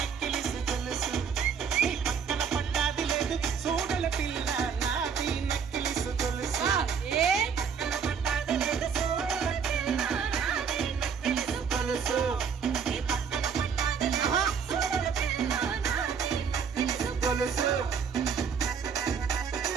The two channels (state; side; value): quieter; left; 6.6 dB